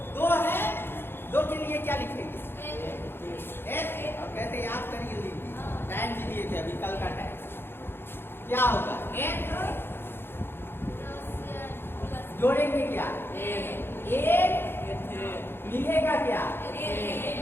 2 है, 2 के लिए क्या लिखेंगे, H। अब कैसे याद करिए, टाइम भी दिए थे अभी, कल का टाइम, क्या होगा, N जोड़ेंगे क्या, एक मिलेगा क्या,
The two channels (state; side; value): late; right; 0.11 ms